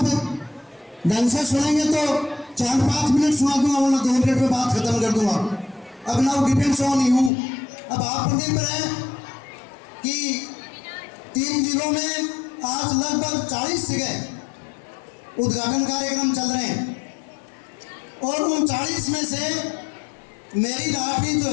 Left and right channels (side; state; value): right; drops out; at 7.3 s